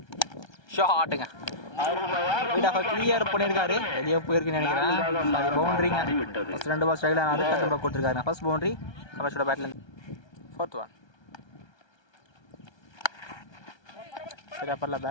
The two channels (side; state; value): right; late; 1.3 ms